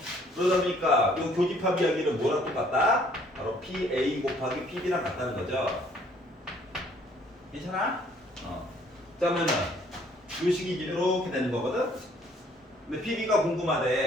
그러다 보니까 이 교집합 이야기는 뭐랑 똑같다? 바로 PA 곱하기 PB랑 같다는 거죠. 괜찮아? 그러면은 이 식이 이렇게 되는 거거든. 근데 PB가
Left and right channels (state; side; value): normal; both; correlation 0.61